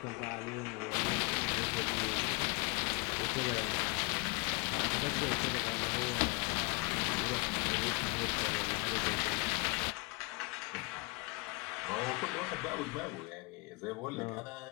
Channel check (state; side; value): quieter; right; 27.1 dB